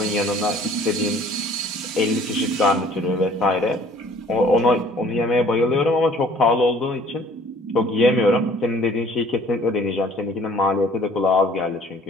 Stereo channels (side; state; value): both; normal; correlation 0.54